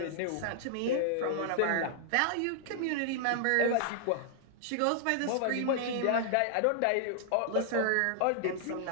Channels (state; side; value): different; both; correlation -0.01